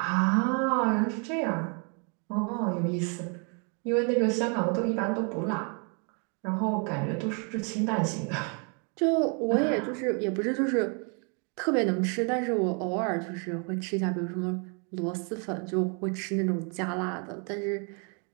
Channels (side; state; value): left; quieter; 38.0 dB